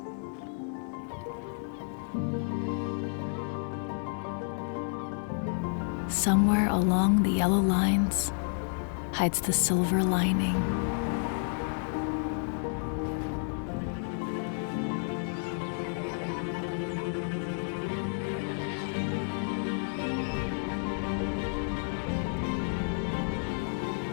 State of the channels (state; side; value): silent; right; 57 dB below the other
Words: Somewhere along the yellow lines hides the silver lining.